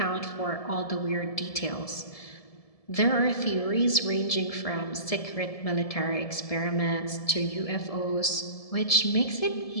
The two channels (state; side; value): late; right; 1.7 ms